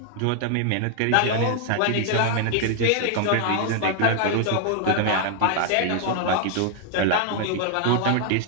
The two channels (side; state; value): both; different; correlation 0.00